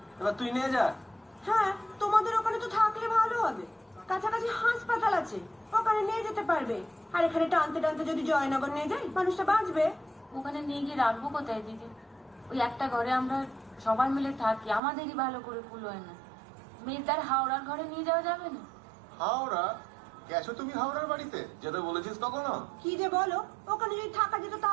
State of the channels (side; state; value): left; drops out; at 14.8 s